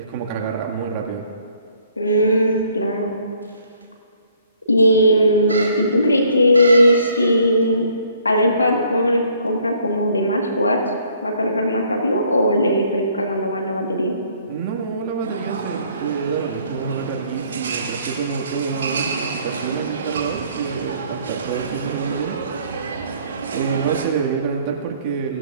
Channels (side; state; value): both; inverted; correlation -0.62